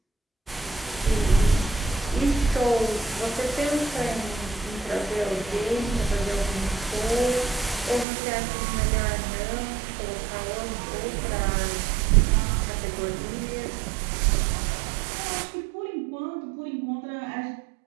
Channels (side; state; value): left; drops out; at 8.1 s